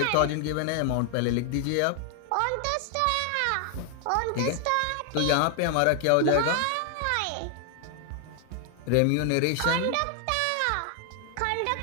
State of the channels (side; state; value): both; different; correlation 0.00